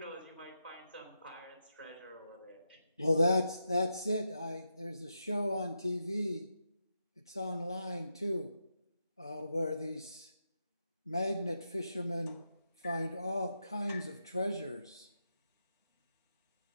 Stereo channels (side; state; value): both; inverted; correlation -0.85